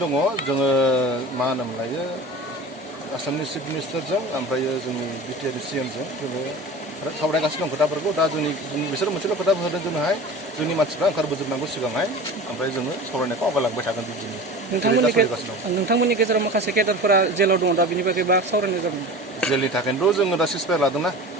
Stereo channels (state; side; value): normal; both; correlation 0.36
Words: दङ जोङो मा होनोमोनलायो आसामनि चिफ मिनिस्टारजों ओमफ्राय जोंनि बिटिआरनि सिएमजों जोङो सावरायगासिनो दं खोथाफोरखौ दा बिसोर मोनसेल' खोथा होदों जोंहाय जोंनि मानसिफ्रा ओंखारबोजोबनांगौ सिगांहाय ओमफ्राय जोङो सावरायनायखौ आवगायलांबाय थागोन बिदिनो नोंथांमोननि गेजेराव माखासे केडारफोरा जेलाव दङ दा बिनि बागै बा सावरायनाय जादों जेलनि थाखायनोथ' जोङो दा सिसफायार लादोंना